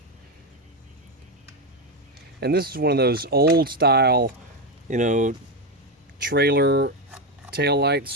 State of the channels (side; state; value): both; normal; correlation 0.11